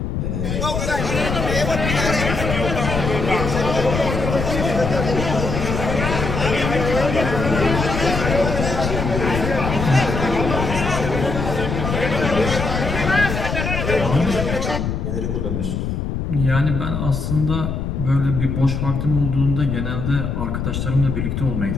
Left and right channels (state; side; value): noise; left; rumble, 2 dB below the sound